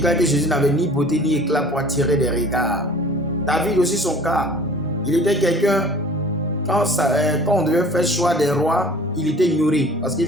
que Jésus n'avait ni beauté ni éclat pour attirer des regards. David aussi son cas. Il était quelqu'un, quand on devait faire choix des rois, il était ignoré parce qu'il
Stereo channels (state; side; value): normal; both; correlation 0.47